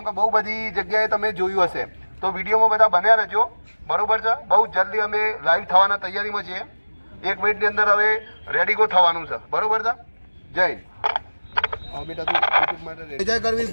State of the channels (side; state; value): both; inverted; correlation -1.00